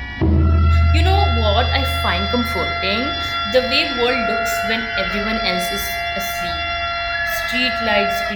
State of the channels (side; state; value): both; identical; correlation 1.00